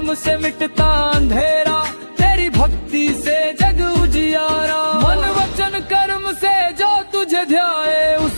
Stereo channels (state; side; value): inverted; both; correlation -1.00